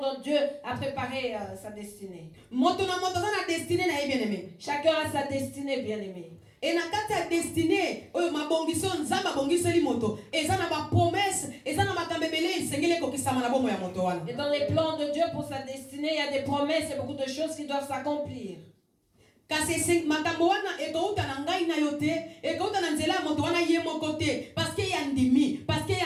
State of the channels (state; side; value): identical; both; correlation 1.00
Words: Dieu a préparé sa destinée. Moto na moto zana destinée na ye bien-aimé. Chacun a sa destinée, bien-aimé. Et na kati ya destinée oyo mabongiso nzamba bongiseli moto eza na ba promesse eza na makambebele isengele kokisama na bomoy ya moto wana. Et dans les plans de Dieu pour sa destinée, il y a des promesses et beaucoup de choses qui doivent s'accomplir. Kasi makambo wana ekouta na ngai na yo te ekouta na nzela ya moto wana ye moko te parce que ya ndimi parce que